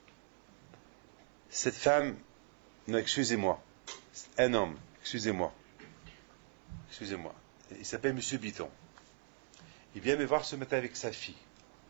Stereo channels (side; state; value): left; silent; 51 dB below the other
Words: Cette femme, non, excusez-moi, un homme, excusez-moi, il s'appelle Monsieur Biton. Il vient me voir ce matin avec sa fille.